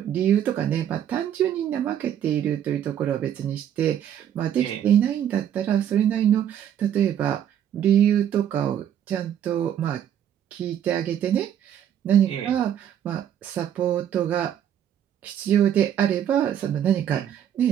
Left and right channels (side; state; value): left; quieter; 9.9 dB